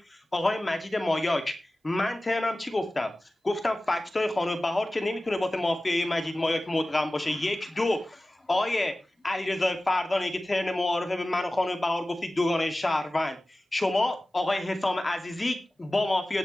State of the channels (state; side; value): normal; both; correlation 0.97